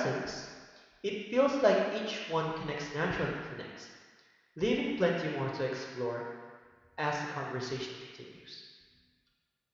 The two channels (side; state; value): both; identical; correlation 1.00